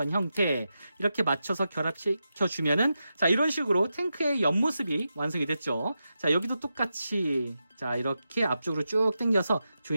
형태 이렇게 맞춰서 결합시켜주면은 자, 이런 식으로 탱크의 옆모습이 완성이 됐죠. 자, 여기도 똑같이 자, 이렇게 앞쪽으로 쭉 당겨서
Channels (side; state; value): both; inverted; correlation -0.89